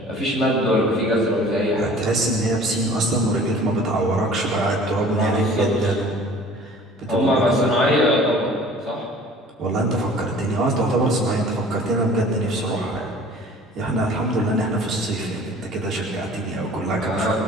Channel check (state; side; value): normal; both; correlation 0.48